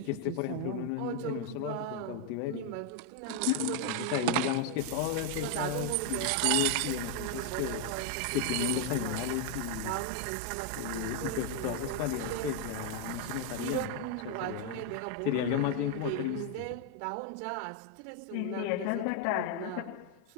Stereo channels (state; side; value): different; both; correlation 0.01